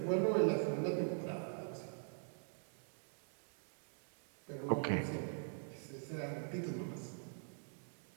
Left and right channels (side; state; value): left; silent; digital silence